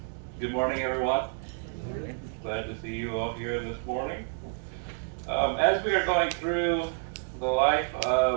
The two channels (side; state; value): left; silent; digital silence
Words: good morning, everyone. Glad to see you all here this morning. As we are going through the life